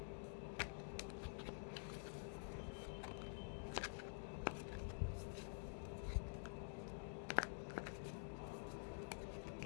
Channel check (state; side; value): silent; right; digital silence